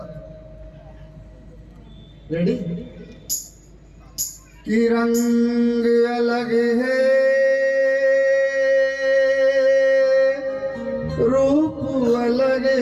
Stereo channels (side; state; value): both; identical; correlation 1.00